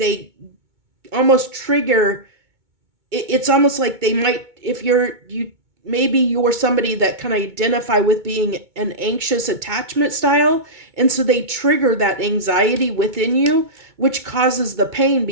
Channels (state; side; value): late; left; 2.2 ms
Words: almost trigger. It's almost like they might, if maybe you're somebody that can identify with being an anxious attachment style, and so they trigger that anxiety within you, which causes the pain,